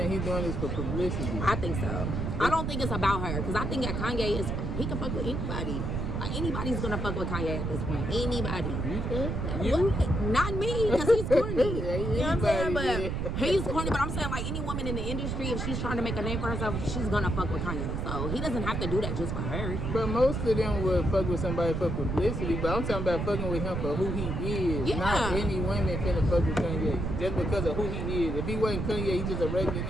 he's doing this for publicity? I think so. I don't think it's about her. Because I think that Kanye he can fuck with anybody. Like, anybody's gonna fuck with Kanye at this point. Anybody. You think? You? Not me, because he's corny. Yeah, you know what I'm saying? But he's corny, but I'm saying, like, any woman in the industry, if she's trying to make a name for herself, she's gonna fuck with Kanye. So he doesn't have to do that just for her. But most of them would fuck with somebody for publicity, but I'm talking about fucking with him for who he is. Yeah. Not any women finna fuck with Kanye. Just because of who he is. If he wasn't Kanye, he's just a regular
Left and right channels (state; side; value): noise; right; rumble, 2 dB below the sound